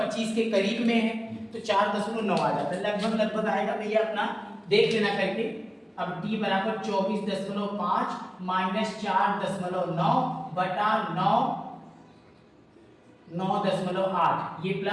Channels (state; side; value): identical; both; correlation 1.00